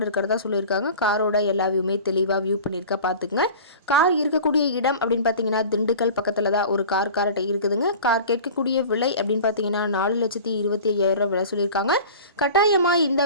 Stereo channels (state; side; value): inverted; both; correlation -0.39